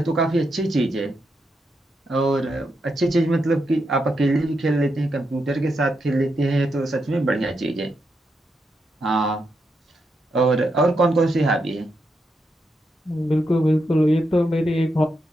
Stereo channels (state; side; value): normal; both; correlation 0.83